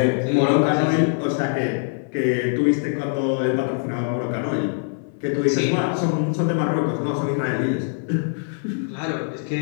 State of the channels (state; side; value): silent; right; 57 dB below the other